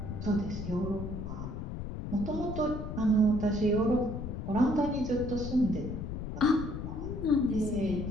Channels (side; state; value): left; noise; rumble, 6 dB below the sound